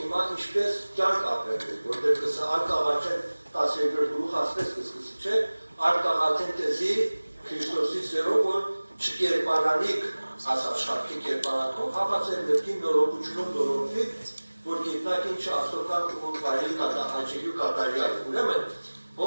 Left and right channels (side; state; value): both; inverted; correlation -1.00